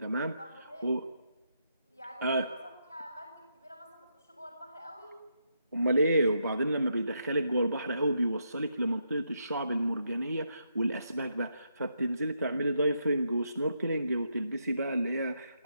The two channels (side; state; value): both; inverted; correlation -0.80